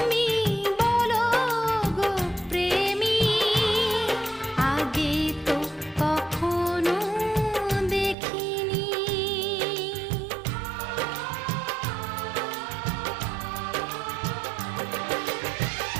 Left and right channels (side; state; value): left; drops out; at 8.2 s